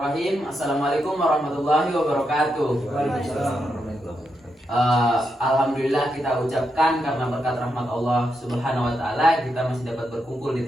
Assalamualaikum warahmatullahi wabarakatuh. Alhamdulillah kita ucapkan karena berkat rahmat Allah Subhanahu wa taala kita masih dapat berkumpul di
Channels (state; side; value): normal; both; correlation 0.84